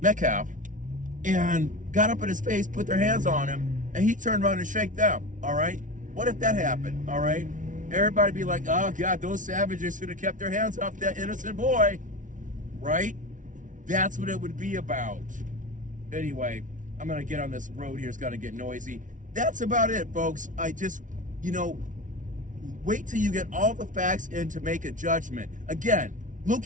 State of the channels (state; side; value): late; left; 0.37 ms